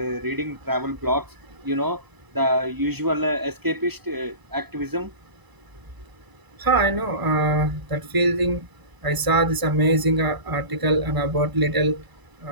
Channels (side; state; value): left; late; 1.0 ms